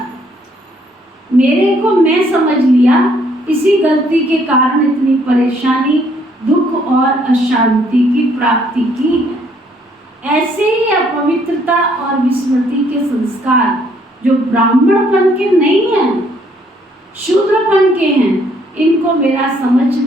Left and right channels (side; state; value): both; normal; correlation 0.66